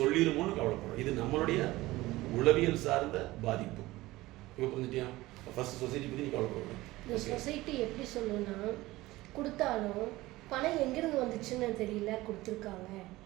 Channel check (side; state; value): left; quieter; 18.5 dB